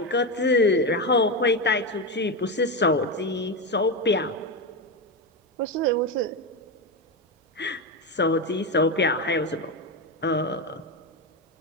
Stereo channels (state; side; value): normal; both; correlation 0.13